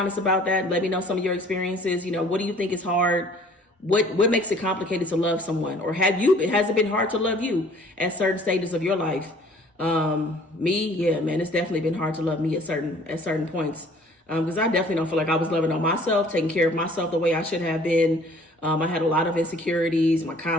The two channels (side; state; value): both; normal; correlation 0.54